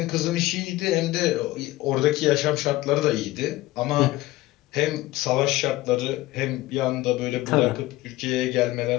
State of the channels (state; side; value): quieter; right; 17.7 dB